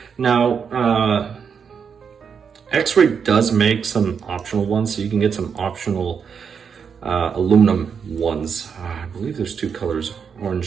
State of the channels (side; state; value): left; quieter; 6.6 dB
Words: Now, Xray does make some optional ones, so you can get some optional aluminum ones. I believe there's 2 colors,